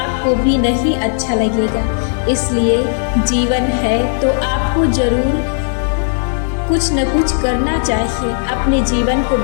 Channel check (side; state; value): right; silent; 65 dB below the other